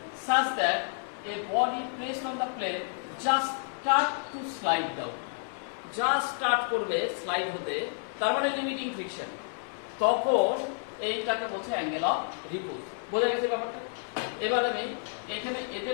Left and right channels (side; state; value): right; silent; 58 dB below the other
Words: such that a body placed on the plane just start to slide down, just start করবে স্লাইড হতে, তার মানে লিমিটিং ফ্রিকশন, তখন এইটাকে বলছে অ্যাঙ্গেল অফ রিপোজ। বোঝা গেছে ব্যাপারটা? এবার আমি এখানে